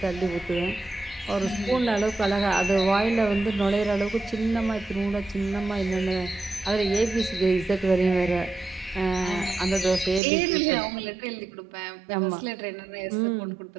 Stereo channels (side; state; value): left; drops out; at 10.2 s